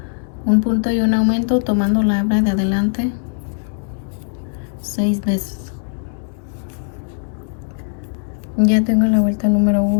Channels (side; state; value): right; silent; digital silence